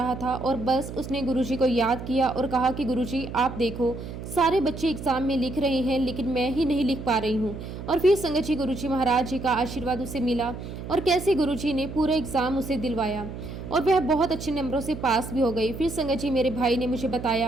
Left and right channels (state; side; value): noise; right; hum, 9 dB below the sound